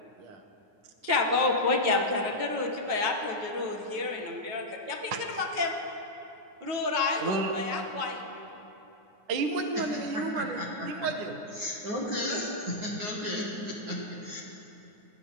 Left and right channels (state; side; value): late; left; 9.6 ms